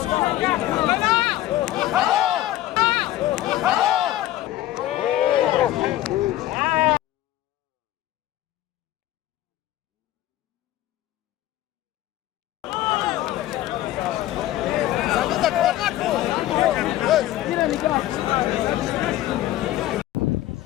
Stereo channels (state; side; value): quieter; right; 14.4 dB